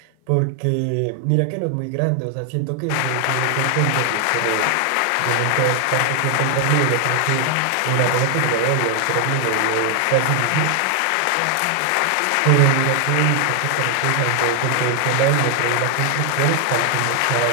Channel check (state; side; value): different; both; correlation 0.00